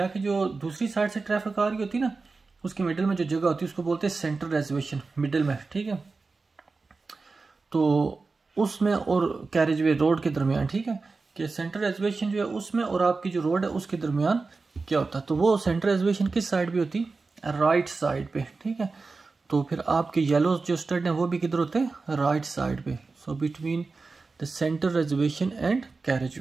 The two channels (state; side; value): quieter; left; 4.0 dB